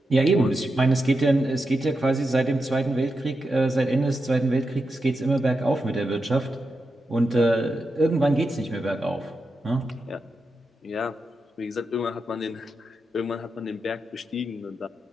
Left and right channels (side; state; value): both; normal; correlation 0.87